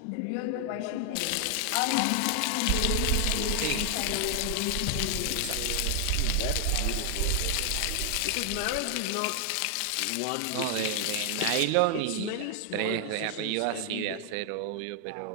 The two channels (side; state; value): both; different; correlation 0.00